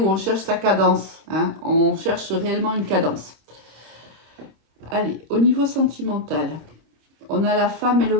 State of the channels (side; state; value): left; late; 26 ms